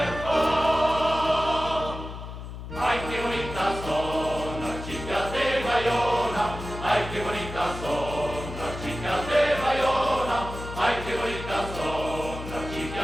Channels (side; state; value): left; noise; hum, 10 dB below the sound